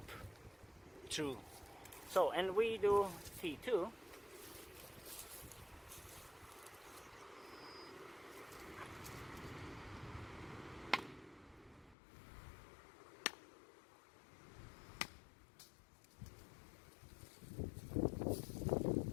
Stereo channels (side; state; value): right; drops out; at 12.0 s